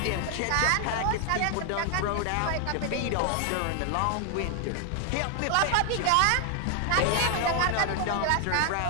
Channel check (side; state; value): both; different; correlation 0.00